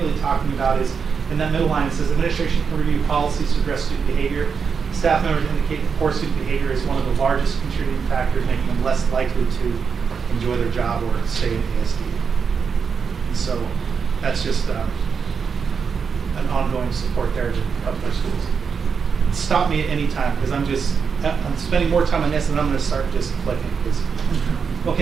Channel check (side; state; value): left; quieter; 6.0 dB